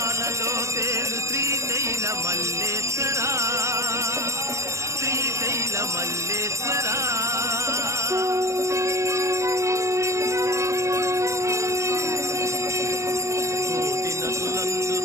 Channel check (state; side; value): late; left; 0.15 ms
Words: తేలు శ్రీశైల మల్లేశ్వర శ్రీశైల మల్లేశ్వర కోటి నదులందు